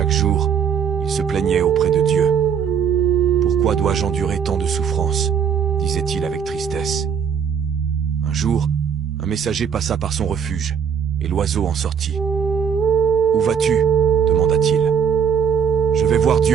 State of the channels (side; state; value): left; quieter; 7.4 dB